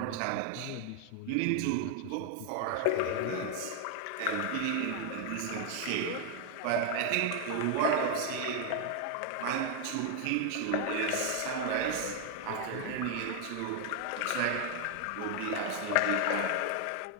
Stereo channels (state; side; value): different; both; correlation 0.00